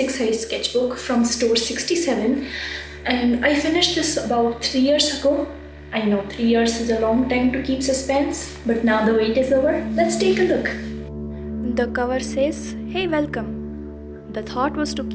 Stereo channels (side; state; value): both; identical; correlation 1.00